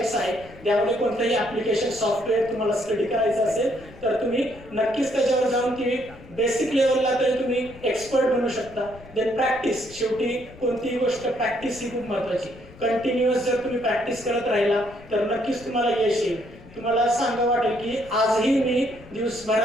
आहेत. त्यामध्ये कोणतंही ॲप्लिकेशन सॉफ्टवेअर तुम्हाला स्टडी करायचं असेल तर तुम्ही नक्कीच त्याच्यावर जाऊन ती बेसिक लेवलला तरी तुम्ही एक्सपर्ट बनू शकता. देन प्रॅक्टिस, शेवटी कोणतीही गोष्ट प्रॅक्टिस ही खूप महत्त्वाची. कंटिन्युअस जर तुम्ही प्रॅक्टिस करत राहिला तर नक्कीच तुम्हाला यश येईल. तुम्हाला सांगा वाटेल की आजही मी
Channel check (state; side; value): noise; left; rumble, 20 dB below the sound